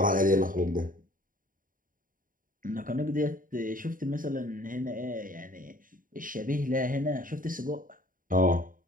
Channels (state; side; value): late; left; 0.40 ms